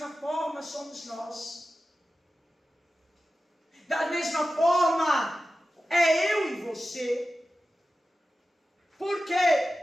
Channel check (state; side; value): normal; both; correlation 0.94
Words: forma somos nós. Da mesma forma é eu e você. Por